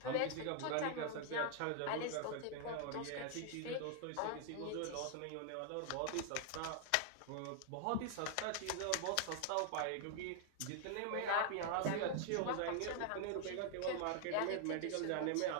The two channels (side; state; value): both; different; correlation 0.00